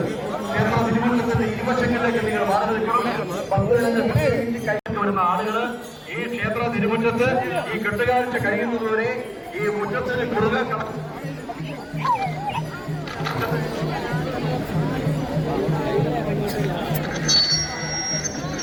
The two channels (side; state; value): both; identical; correlation 1.00